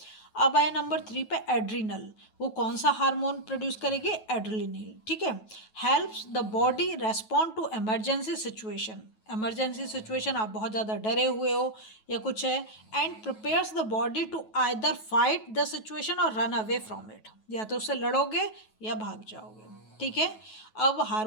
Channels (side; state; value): right; late; 9.2 ms